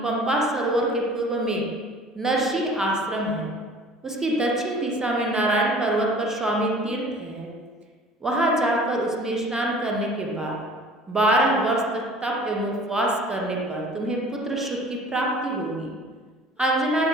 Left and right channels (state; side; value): normal; both; correlation 0.47